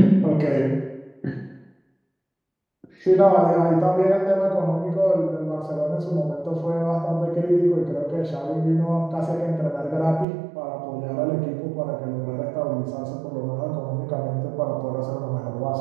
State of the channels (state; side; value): drops out; left; at 10.2 s